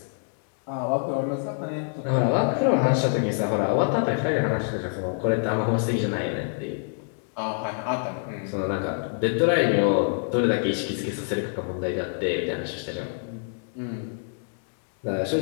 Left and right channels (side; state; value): right; silent; 61 dB below the other